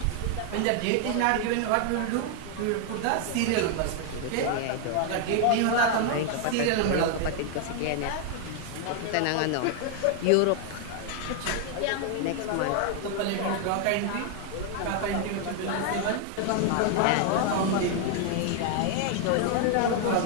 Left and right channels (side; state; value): both; different; correlation 0.00